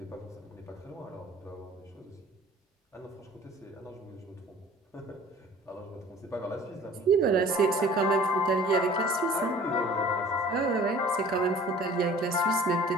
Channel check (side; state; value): both; normal; correlation 0.48